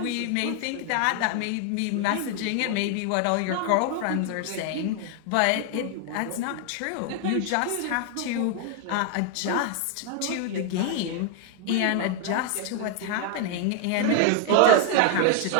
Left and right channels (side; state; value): both; different; correlation 0.00